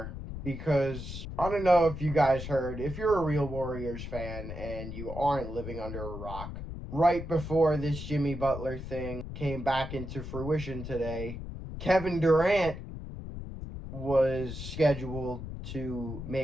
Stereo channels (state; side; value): noise; left; rumble, 8 dB below the sound